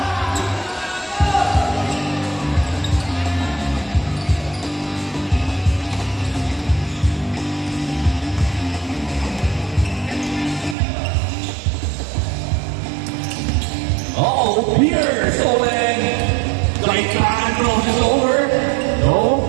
Uh-oh, Pierce Owen. Right hand crosses over. No.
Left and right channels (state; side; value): drops out; left; at 10.8 s